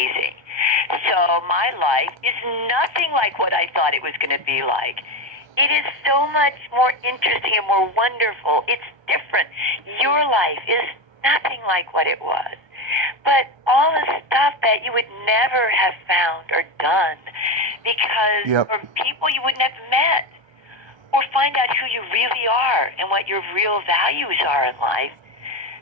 So my life is nothing like what I thought it was going to be like. It is so much more interesting and more wonderful. It's different. Your life is nothing like what it was. But all the stuff that you would never have found or done because or people you wouldn't have met or find out who you really are and what your real values are in life,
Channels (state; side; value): late; left; 1.3 ms